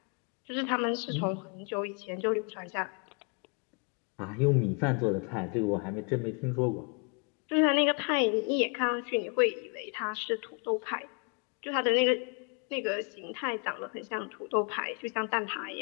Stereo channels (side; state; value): right; quieter; 36.5 dB